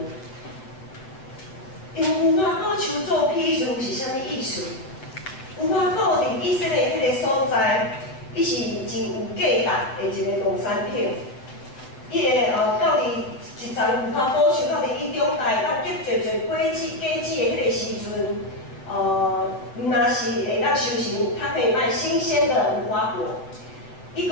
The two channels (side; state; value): right; late; 7.8 ms